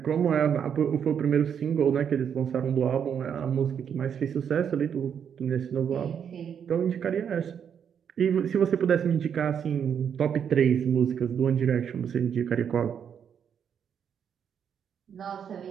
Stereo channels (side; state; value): left; quieter; 7.9 dB